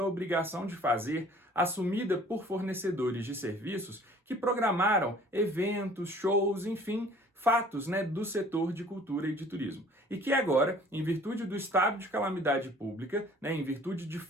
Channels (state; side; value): normal; both; correlation 0.52